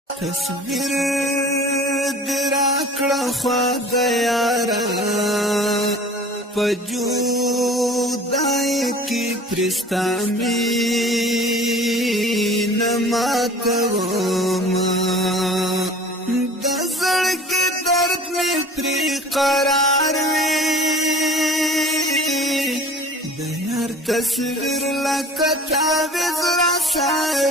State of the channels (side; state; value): both; normal; correlation 0.44